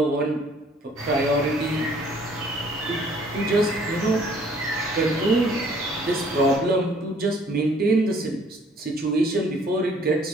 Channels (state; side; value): normal; both; correlation 0.59